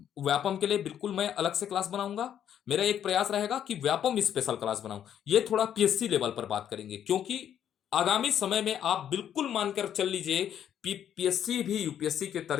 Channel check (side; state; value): right; quieter; 9.7 dB